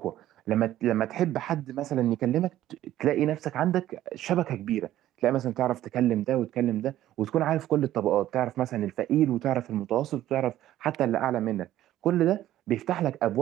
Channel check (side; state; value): left; quieter; 13.4 dB